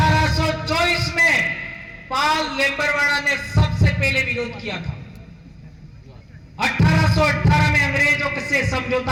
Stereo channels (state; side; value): identical; both; correlation 1.00